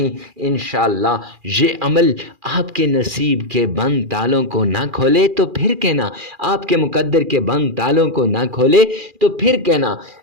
انشاءاللہ یہ عمل آپ کے نصیب کے بند تالوں کو نہ کھولے تو پھر کہنا، آپ کے مقدر کے بند تالوں کو نہ کھولے تو پھر کہنا،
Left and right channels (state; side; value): late; left; 2.4 ms